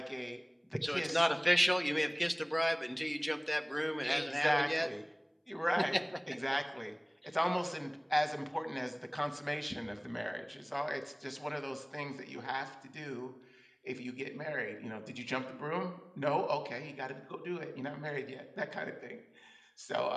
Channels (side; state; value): both; identical; correlation 1.00